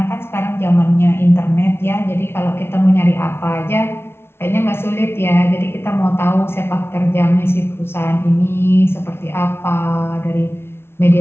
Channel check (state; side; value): late; right; 0.12 ms